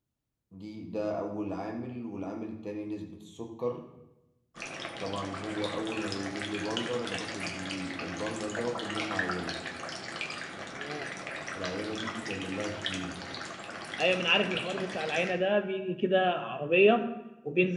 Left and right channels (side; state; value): both; identical; correlation 1.00